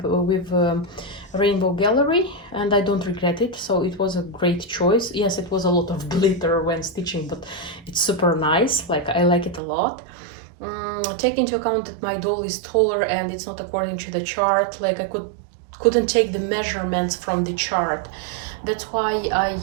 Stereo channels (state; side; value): drops out; left; at 9.6 s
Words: Rainbow Gallery, and I don't regret it. So it was a great choice. Yes, it was a lot of glitter when stitching, but it's super nice. Like, I like it a lot. Take into account that my doll is taller and it's not according to the chart. Like, I couldn't take the measurements from the chart. That's why